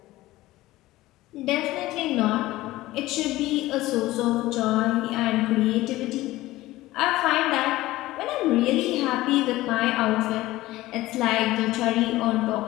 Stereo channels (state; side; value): quieter; right; 17.3 dB